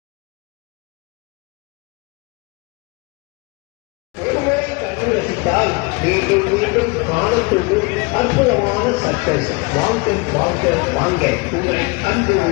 மீண்டும் மீண்டும் காணத்தோடும் அற்புதமான சர்க்கஸ் வாங்க வாங்க வாங்க உங்களை கண்டு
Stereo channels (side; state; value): right; quieter; 27.4 dB